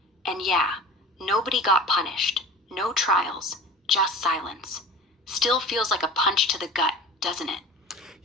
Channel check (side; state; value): both; normal; correlation 0.37